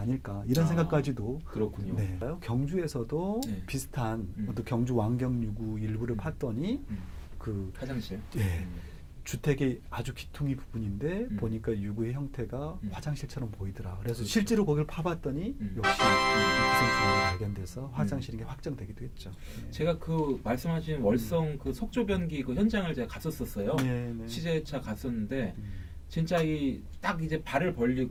이런 생각까지도 그렇군요. 네. 경주에서도 비슷한 어떤 경주 왕경 유구 일부를 팠더니 그 화장실. 예. 주택의 아주 기퉁이 부분인데 보니까 유구의 형태가 화장실처럼 보이더라. 그래서 실제로 거기를 파봤더니 역시 기생충이 발견돼서 화장실인 게 확정되기도 했죠. 네. 제가 그 말씀하신 월성 그 석조변기 그 현장을 제가 갔었어요. 네, 네. 취재차 갔었는데 진짜 딱 이제 발을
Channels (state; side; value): identical; both; correlation 1.00